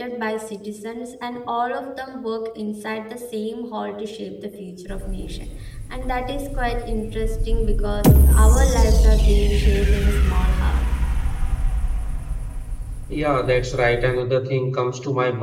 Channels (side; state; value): both; identical; correlation 1.00